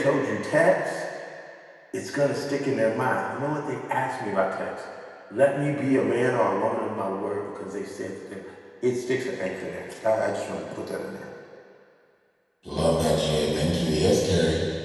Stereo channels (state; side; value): identical; both; correlation 1.00